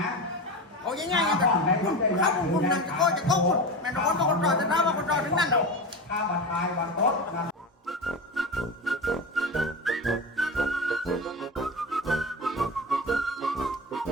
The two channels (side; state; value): both; normal; correlation 0.24